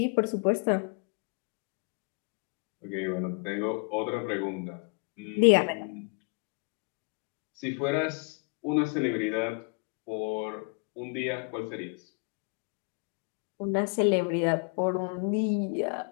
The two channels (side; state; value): right; quieter; 35.3 dB